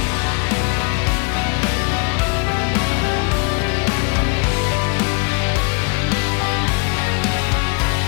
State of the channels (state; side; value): quieter; right; 30.4 dB